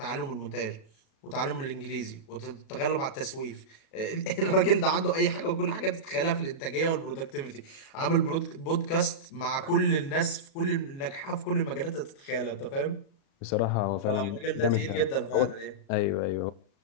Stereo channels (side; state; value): right; late; 37 ms